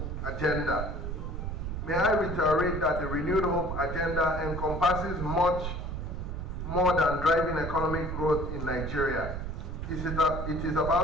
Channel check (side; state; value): right; noise; rumble, 5 dB below the sound